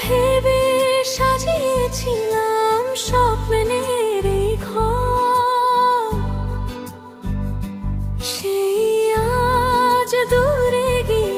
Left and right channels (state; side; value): identical; both; correlation 1.00